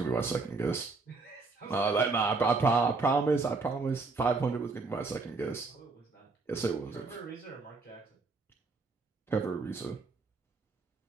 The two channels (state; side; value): quieter; left; 3.9 dB